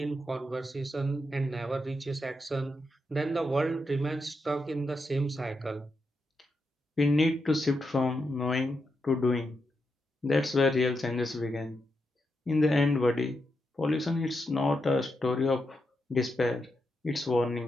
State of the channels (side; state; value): both; normal; correlation 0.85